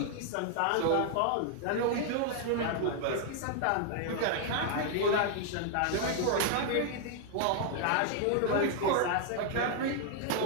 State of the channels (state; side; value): different; both; correlation 0.00